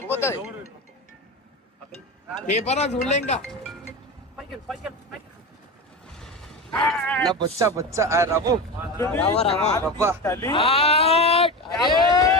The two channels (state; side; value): normal; both; correlation 0.24